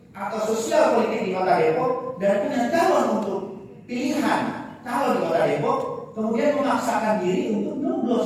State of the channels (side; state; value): both; identical; correlation 1.00